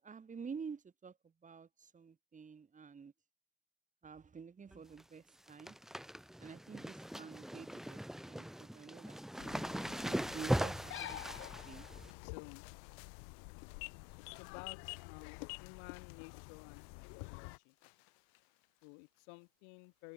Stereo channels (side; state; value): right; drops out; at 12.1 s